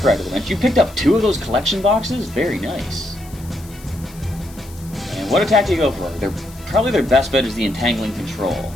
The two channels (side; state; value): left; noise; hiss, 21 dB below the sound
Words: to the bench. You picked up 2 of those collection boxes? Very nice. And what attack do you go for? Probably their best bet is the Entangling Control.